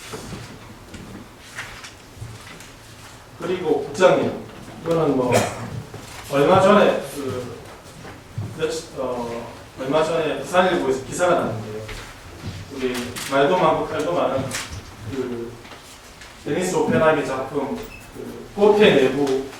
그리고 국장님 이거는 뭐 얼마 전에 얼마 전에 부산일보에서 기사가 났는데요. 우리 말도 많고 칼도 많은 그 데니스 오펜하이의 작품 그 호텔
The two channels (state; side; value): identical; both; correlation 1.00